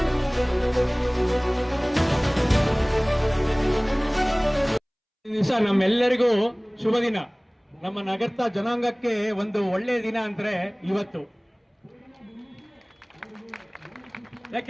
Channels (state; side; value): identical; both; correlation 1.00